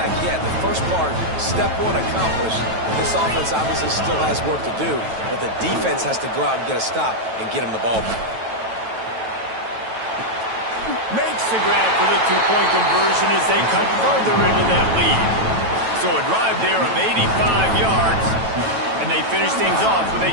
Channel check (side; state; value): left; late; 9.1 ms